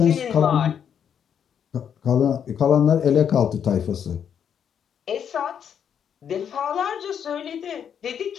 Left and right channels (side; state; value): right; quieter; 8.2 dB